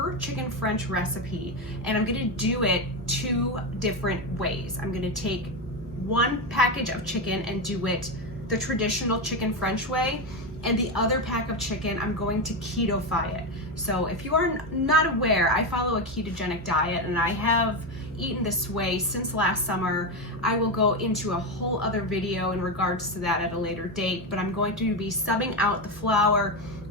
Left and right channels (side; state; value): both; normal; correlation 0.12